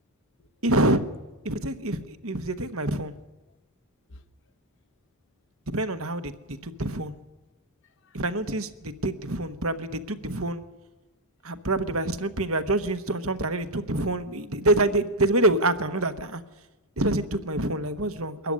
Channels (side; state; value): both; normal; correlation 0.05